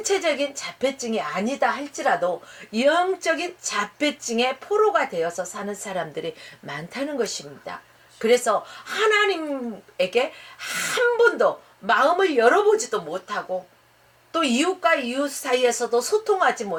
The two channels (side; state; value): both; identical; correlation 1.00